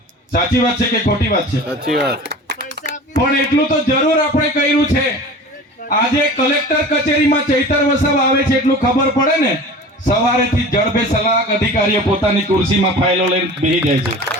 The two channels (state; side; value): normal; both; correlation 0.38